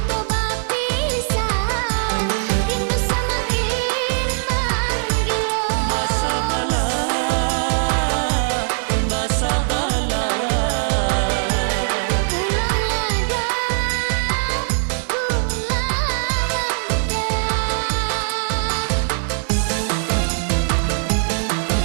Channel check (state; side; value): silent; left; 65 dB below the other